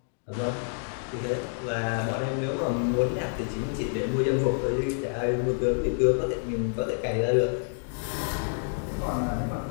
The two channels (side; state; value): right; silent; 59 dB below the other